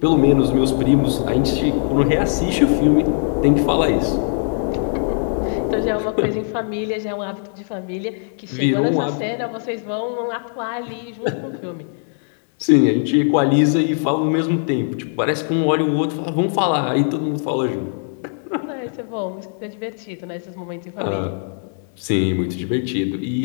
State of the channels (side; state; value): right; silent; 63 dB below the other